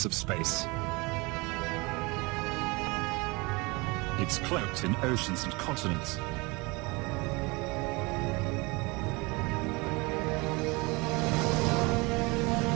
of space. It's cloaked in oceans and continents.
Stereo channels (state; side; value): quieter; left; 25.8 dB